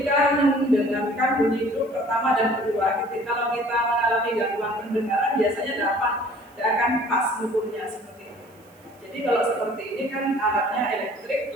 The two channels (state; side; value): noise; right; hiss, 30 dB below the sound